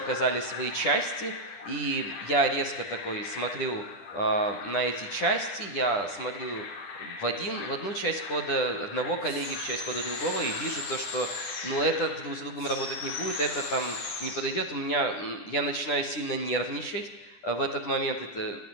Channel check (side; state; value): right; late; 10 ms